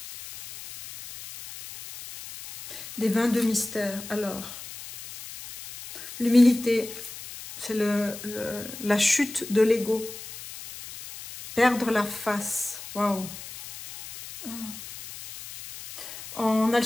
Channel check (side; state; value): left; noise; hiss, 13 dB below the sound